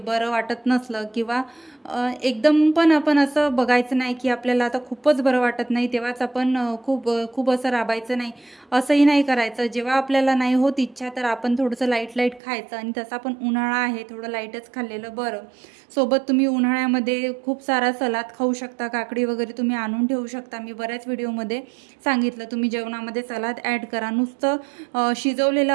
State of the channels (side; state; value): left; drops out; at 12.4 s